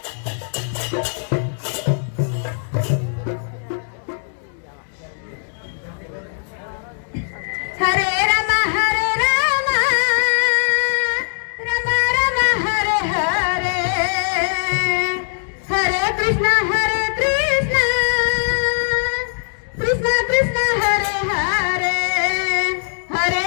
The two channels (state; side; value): silent; right; digital silence